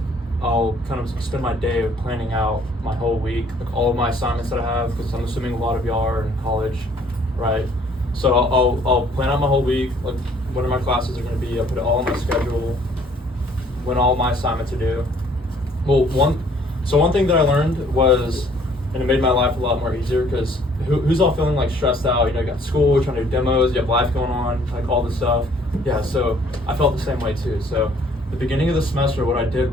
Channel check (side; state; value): both; normal; correlation 0.60